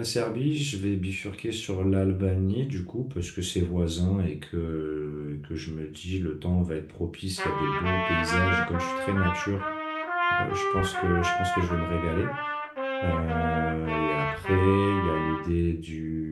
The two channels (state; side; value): identical; both; correlation 1.00